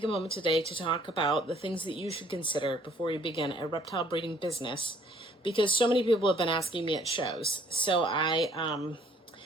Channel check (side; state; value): both; normal; correlation 0.60